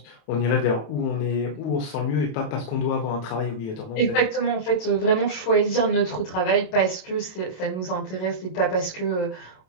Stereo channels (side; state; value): right; late; 27 ms